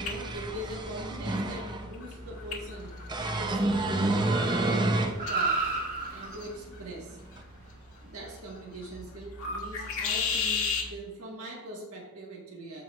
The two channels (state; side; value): normal; both; correlation 0.41